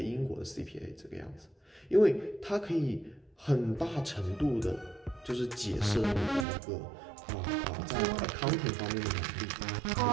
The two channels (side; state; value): left; drops out; at 6.5 s